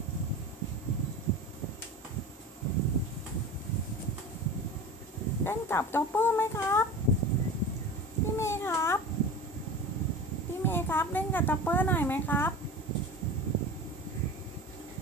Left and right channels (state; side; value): normal; both; correlation 0.33